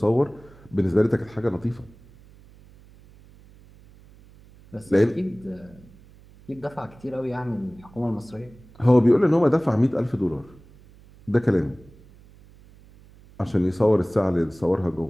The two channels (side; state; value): right; noise; hum, 25 dB below the sound